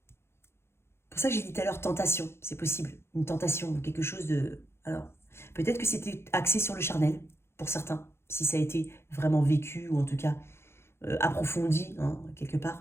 Pour ça que j'ai dit tout à l'heure tentation, c'est possible. Une tentation, quelque chose de... Alors, peut-être que c'était axé sur le charnel, pour certains, si ça a été vraiment vécu, ou en tout cas approfondi, hein, quelque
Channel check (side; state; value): right; late; 0.12 ms